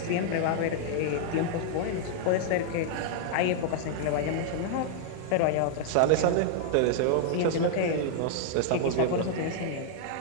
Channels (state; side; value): different; both; correlation -0.01